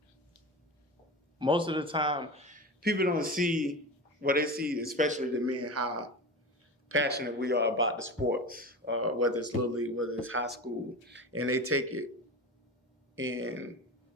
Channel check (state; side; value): normal; both; correlation 0.28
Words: Most of the time, people don't see what they see, especially the men, how passionate we are about the sports, whether it's Little League, whether it's high school, and they take it and